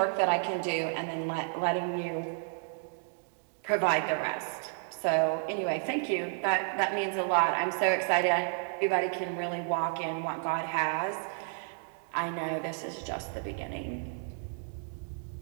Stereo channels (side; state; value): left; silent; 57 dB below the other